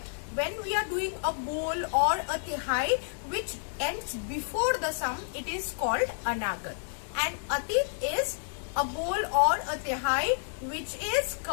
when we are doing a bol or a Tihai which ends before the sum, it is called Anagat. And Atit is a bol or a Tihai which is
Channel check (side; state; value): right; silent; digital silence